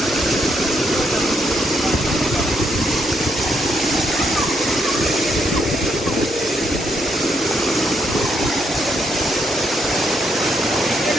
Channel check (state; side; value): normal; both; correlation 0.76